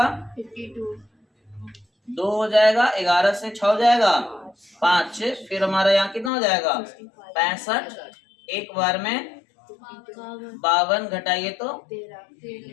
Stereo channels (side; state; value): right; drops out; at 6.3 s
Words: 2 हो जाएगा, 11 से 6 हो जाएगा 5, फिर हमारा यहाँ कितना हो जाएगा? 65 एक बार में 52 घटाइए तो